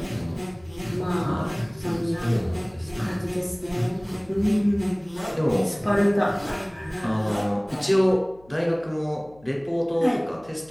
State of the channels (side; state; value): left; noise; hum, 26 dB below the sound